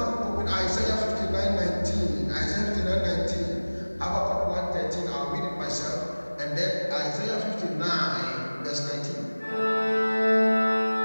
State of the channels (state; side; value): inverted; both; correlation -1.00